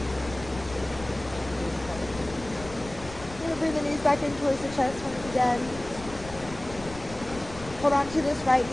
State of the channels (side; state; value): left; noise; rumble, 15 dB below the sound